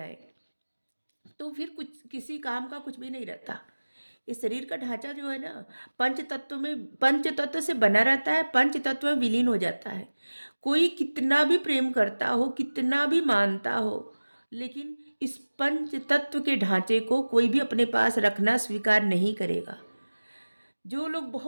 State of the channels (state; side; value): inverted; both; correlation -1.00